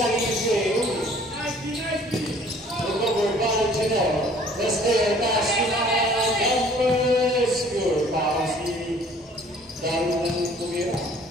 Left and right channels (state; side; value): normal; both; correlation 0.54